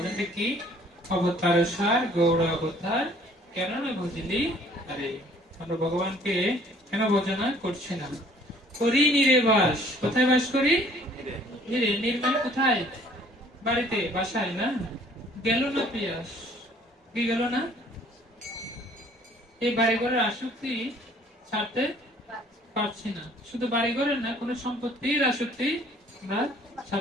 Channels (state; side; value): normal; both; correlation 0.56